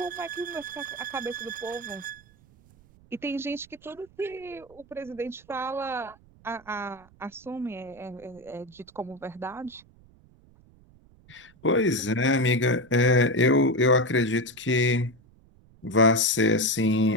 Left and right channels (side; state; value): right; noise; rumble, 27 dB below the sound